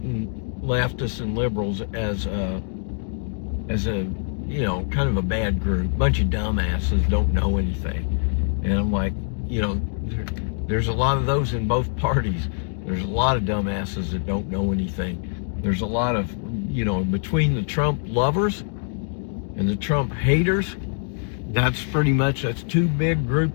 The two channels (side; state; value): right; silent; digital silence